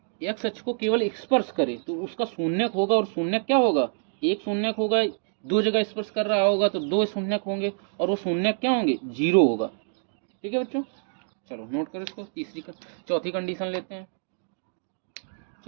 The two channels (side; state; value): left; silent; digital silence